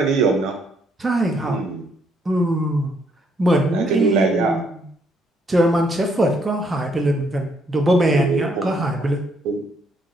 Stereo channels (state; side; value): normal; both; correlation 0.71